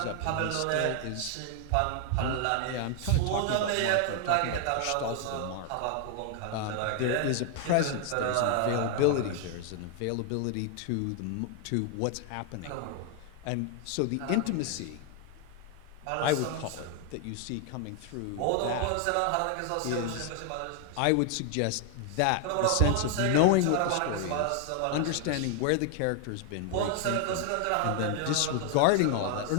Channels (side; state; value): both; different; correlation 0.00